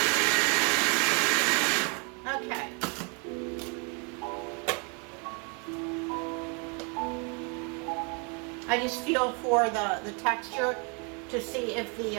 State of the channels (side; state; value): left; quieter; 34.3 dB